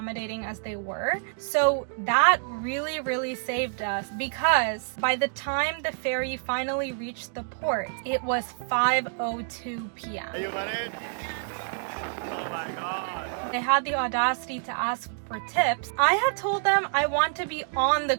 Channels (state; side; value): silent; left; digital silence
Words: as they were. So that really saved us, because by the time the ferry finally reached the port, it was 5:02 p.m. Are you ready? Oh my god. They had the audacity to ask for tips. I had told them I want to be on the